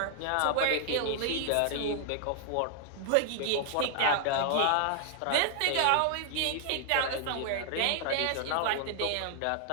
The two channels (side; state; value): both; different; correlation 0.00